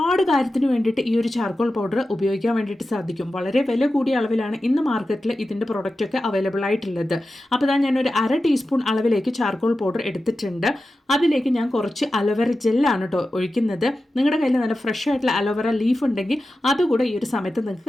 കാര്യത്തിന് വേണ്ടിയിട്ട് ഈ ഒരു ചാർക്കോൾ പൗഡർ ഉപയോഗിക്കാൻ വേണ്ടിയിട്ട് സാധിക്കും. വളരെ വില കൂടിയ അളവിലാണ് ഇന്ന് മാർക്കറ്റിൽ ഇതിൻ്റെ പ്രൊഡക്റ്റൊക്കെ അവൈലബിൾ ആയിട്ടുള്ളത്. അപ്പോൾ ഇതാ ഞാനൊരു 1/2 ടീസ്പൂൺ അളവിലേക്ക് ചാർക്കോൾ പൗഡർ എടുത്തിട്ടുണ്ട്. അതിലേക്ക് ഞാൻ കുറച്ച് അലോവേറ ജെല്ലാണ് കേട്ടോ ഒഴിക്കുന്നത്. നിങ്ങളുടെ കയ്യിൽ നല്ല ഫ്രഷ് ആയിട്ടുള്ള അലോവേറ ലീഫ് ഉണ്ടെങ്കിൽ അതുകൂടെ ഈ ഒരു സമയത്ത്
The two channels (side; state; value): both; normal; correlation 0.93